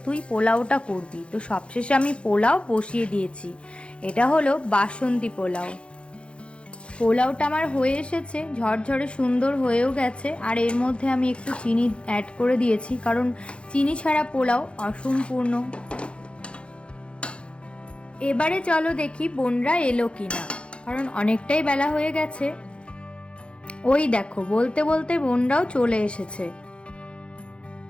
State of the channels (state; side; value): late; right; 0.058 ms